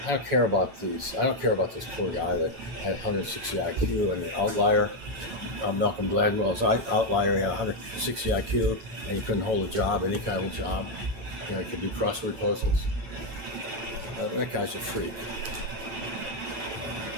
I don't care about this poor guy that had 160 IQ and an outlier. Malcolm Gladwell's outlier, he had 160 IQ and he couldn't hold a job, any kind of job. He could do crossword puzzles. That guy's a freak.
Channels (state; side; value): late; left; 9.0 ms